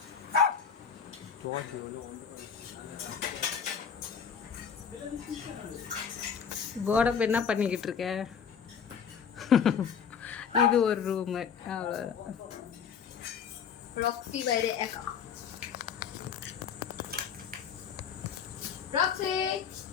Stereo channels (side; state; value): right; quieter; 7.0 dB